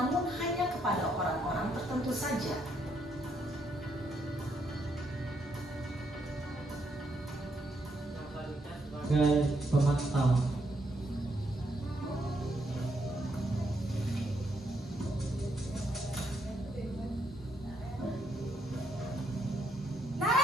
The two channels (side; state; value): both; normal; correlation 0.75